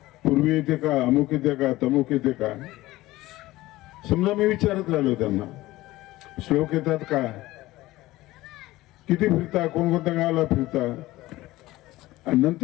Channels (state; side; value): quieter; right; 17.7 dB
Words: पूर्वी येते का, अमुक येते का, तमुक येते का. समजा मी विचारत राहिलो त्यांना, श्लोक येतात का, किती फिरता, कोणकोणत्या गावाला फिरता. आणि